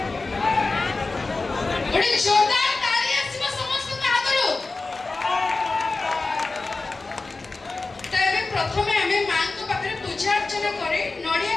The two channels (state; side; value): quieter; right; 3.6 dB